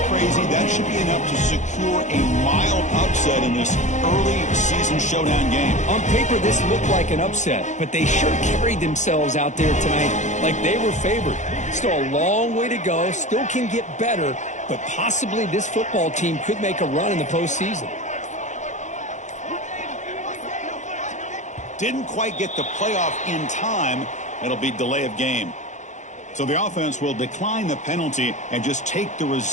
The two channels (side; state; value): right; late; 0.35 ms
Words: crazy, that should be enough to secure a mild upset in this early season showdown game. On paper, this looked like an upset, but they sure carried themselves out there tonight like they were favored. Still a long way to go, still can get better, but possibly this football team could make a run in the postseason. Didn't quite get the playoff in time. It'll be delay of game. So the offense will decline the penalty and just take the